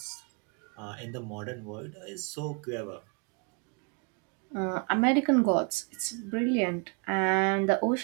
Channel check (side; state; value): left; quieter; 34.5 dB